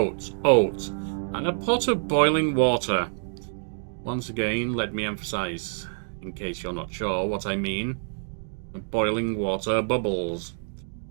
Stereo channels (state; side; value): silent; left; digital silence